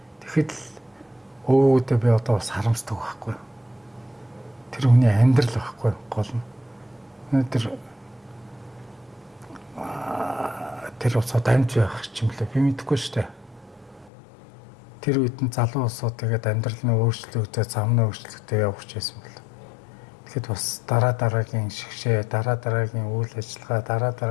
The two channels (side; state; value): right; drops out; at 14.1 s